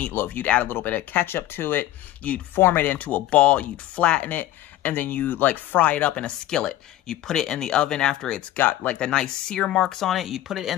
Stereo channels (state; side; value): quieter; right; 14.0 dB